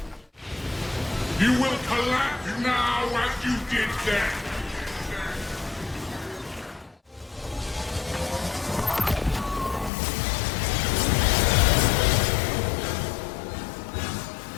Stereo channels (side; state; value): right; drops out; at 9.9 s